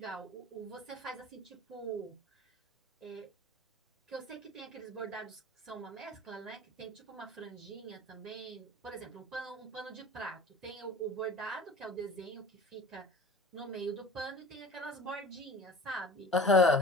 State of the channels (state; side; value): normal; both; correlation 0.40